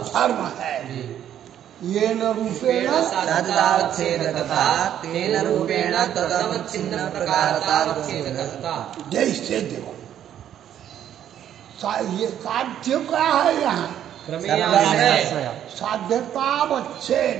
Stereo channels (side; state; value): left; quieter; 10.4 dB